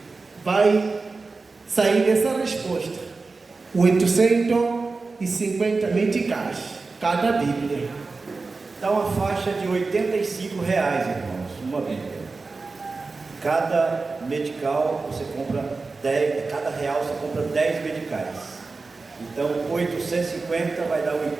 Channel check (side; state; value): left; quieter; 4.0 dB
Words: Vai sair essa resposta. 850 meticais cada Bíblia. Dá uma faixa de R$85, irmãos, uma Bíblia. Cada medical você compra 10, cada real você compra 10 medicais. Então 850 vai dar